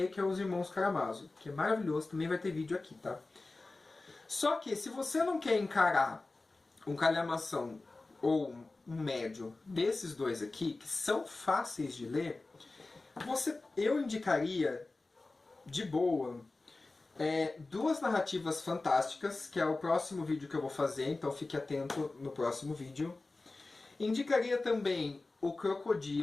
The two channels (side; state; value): right; quieter; 3.3 dB